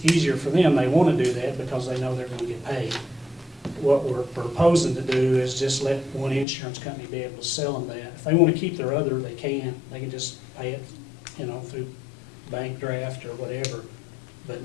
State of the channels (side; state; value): right; drops out; at 6.5 s